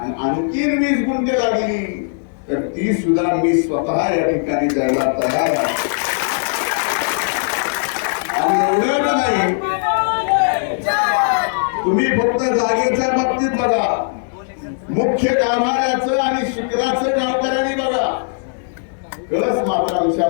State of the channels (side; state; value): right; silent; digital silence